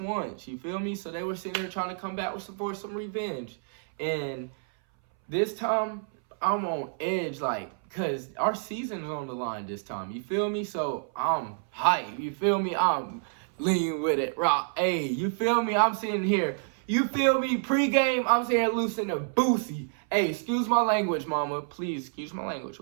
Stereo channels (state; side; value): silent; left; 59 dB below the other